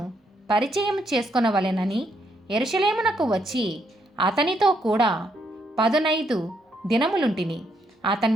పరిచయం చేసుకొనవలెనని యెరూషలేమునకు వచ్చి అతనితో కూడా 15 దినములుంటిని.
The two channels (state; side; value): normal; both; correlation 0.75